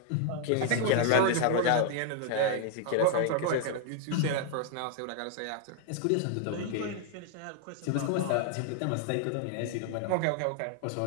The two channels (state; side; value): different; both; correlation 0.00